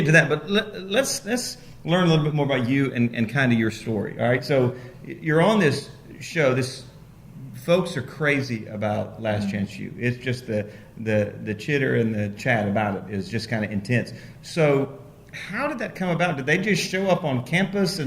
to that, but let's learn a little bit more about you and kind of your story. All right, so you're on this show. Folks are crazy about Last Chance U. It's just the chitter and the chat about it is just kind of intense. So how did that come about? Did they just show up on campus?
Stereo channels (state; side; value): identical; both; correlation 1.00